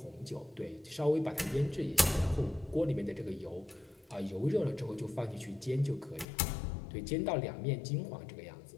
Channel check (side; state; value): right; drops out; at 6.2 s